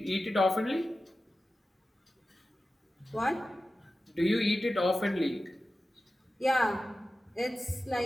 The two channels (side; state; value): both; normal; correlation 0.94